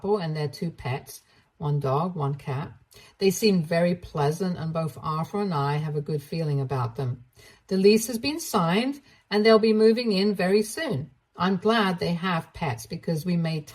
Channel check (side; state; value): both; identical; correlation 1.00